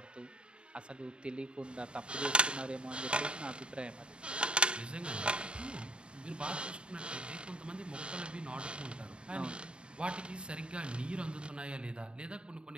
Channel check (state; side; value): late; left; 0.053 ms